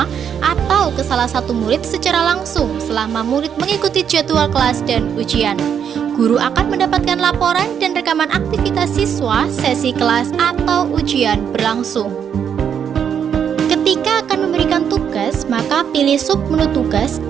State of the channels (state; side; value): quieter; left; 8.1 dB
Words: atau ke salah satu murid secara langsung selama murid mengikuti jadwal kelas dan ujian. Guru akan mendapatkan laporan dan rekaman aktivitas siswa, sesi kelas atau ujian berlangsung. Ketika akan memberikan tugas, maka pilih submenu tugas